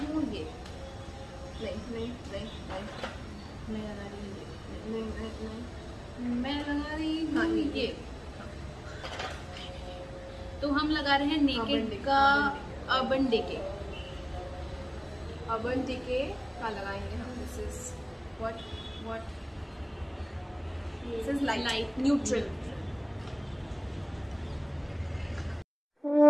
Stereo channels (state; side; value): identical; both; correlation 1.00